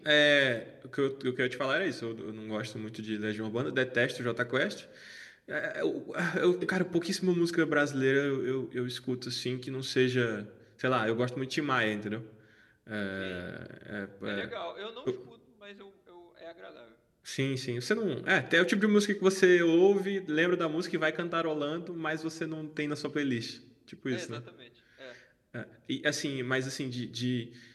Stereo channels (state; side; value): identical; both; correlation 1.00